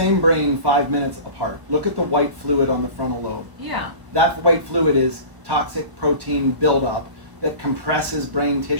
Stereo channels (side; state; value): left; late; 1.0 ms